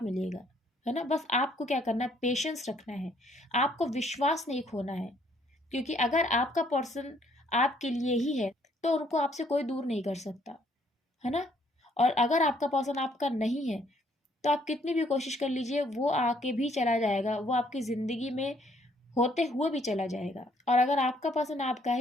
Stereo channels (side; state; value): both; normal; correlation 0.66